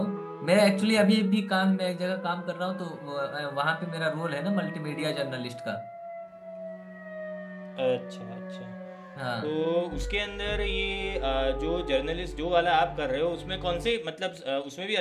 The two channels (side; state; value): both; identical; correlation 1.00